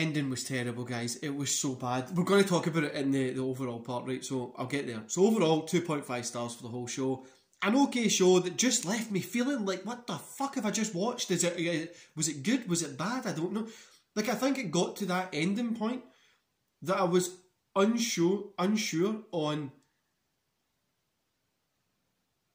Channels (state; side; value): identical; both; correlation 1.00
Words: was terrible, guys. It was so bad. We're going to talk about it in the overall part, right? So I'll get there. So overall, 2.5 stars for the whole show. An okay show that just left me feeling like, what the fuck have I just watched? Was it good? Was it bad? I don't know. Like, I think it got to that ending point that I was unsure on